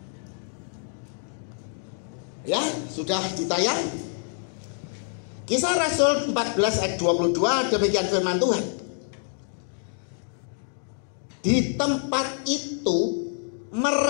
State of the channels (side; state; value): right; silent; 57 dB below the other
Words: Ya, sudah ditayang. Kisah Rasul 14 ayat 22, demikian firman Tuhan. Di tempat itu